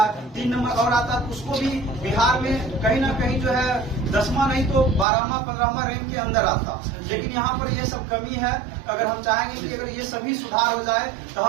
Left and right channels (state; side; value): drops out; left; at 5.1 s